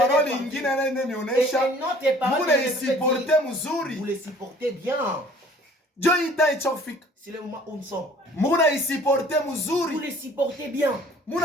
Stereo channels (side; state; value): both; normal; correlation 0.52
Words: nyingine anayonionyesha. Vous supporter mzuri. Vous le supportez bien. Jo ita ichofika. C'est le moment où nous sommes. Muna supporter mzuri. Vous le supportez bien.